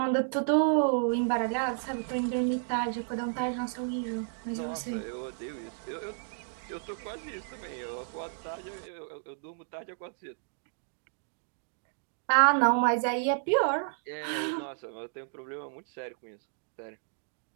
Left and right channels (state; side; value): silent; left; digital silence